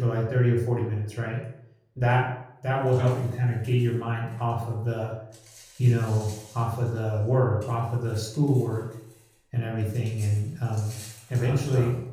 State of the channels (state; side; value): identical; both; correlation 1.00